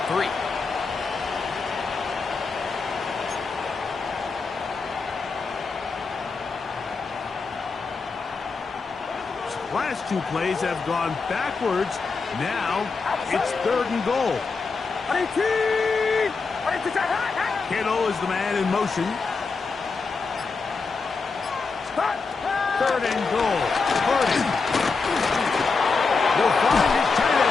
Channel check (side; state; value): right; quieter; 4.5 dB